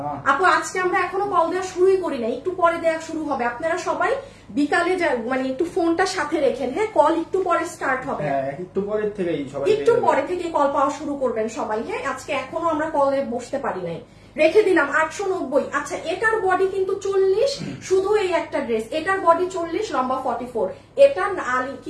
আপু, আজকে আমরা এখনো কল দেওয়া শুরুই করি না, একটু পরে দেওয়া শুরু হবে। আপনারা সবাই বিকালে মানে একটু ফোনটা সাথে রেখেন। হ্যাঁ, কল একটু পরে স্টার্ট হবে, একটু পরে থেকেই সবাই, একটু পরে থেকে কল পাওয়া শুরু করবেন সবাই। হ্যাঁ, আজকে এখনো আমরা কলে বসতে পারি নাই, রেখে দিলাম। 890। আচ্ছা, এটার বডি কিন্তু 40, শুধু এই একটা ড্রেস, এটার বডি 40, লম্বা 44। এটা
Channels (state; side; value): identical; both; correlation 1.00